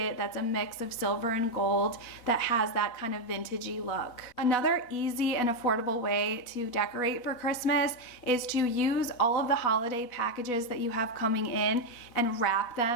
that's a mix of silver and gold that has that kind of vintagey look. Another easy and affordable way to decorate for Christmas is to use all of the holiday packages that you have coming in and wrap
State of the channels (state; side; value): late; right; 4.1 ms